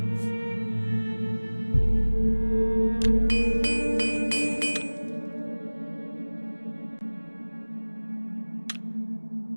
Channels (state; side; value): inverted; both; correlation -1.00